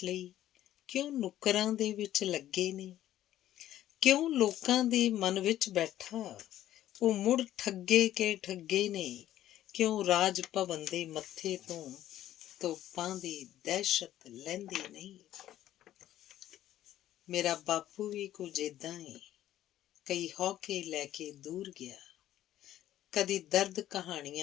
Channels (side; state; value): right; quieter; 12.9 dB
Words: ਲਈ, ਕਿਉਂ ਨੁੱਕਰਾਂ ਦੇ ਵਿੱਚ ਲੱਗੇ ਨੇ। ਕਿਉਂ ਲੋਕਾਂ ਦੇ ਮਨ ਵਿੱਚ ਬੈਠਾ, ਉਹ ਮੁੜ ਠੱਗੇ ਕੇ ਠੱਗੇ ਨੇ। ਕਿਉਂ ਰਾਜ ਭਵਨ ਦੇ ਮੱਥੇ ਤੋਂ ਤੋਪਾਂ ਦੀ ਦਹਿਸ਼ਤ ਲੈਂਦੀ ਨਹੀਂ। ਮੇਰਾ ਬਾਪੂ ਵੀ ਕੁਝ ਏਦਾਂ ਏ, ਕਈ ਹੌਕੇ ਲੈ ਕੇ ਦੂਰ ਗਿਆ। ਕਦੀ ਦਰਦ